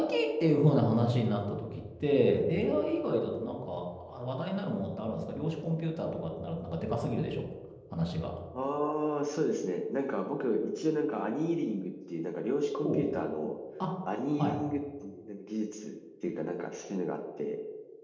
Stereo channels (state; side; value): identical; both; correlation 1.00